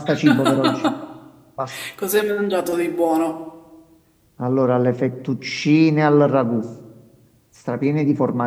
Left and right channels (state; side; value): identical; both; correlation 1.00